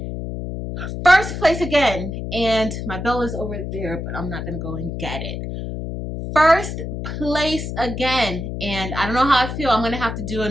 1st place again, and my bell is over there, but I'm not going to go and get it. 1st place again, and I don't know how I feel. I'm going to have to do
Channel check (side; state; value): left; noise; hum, 6 dB below the sound